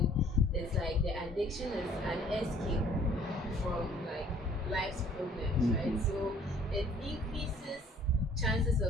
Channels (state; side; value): normal; both; correlation 0.57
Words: it's like the addiction is an escape from like life's problems, right? So it increases chances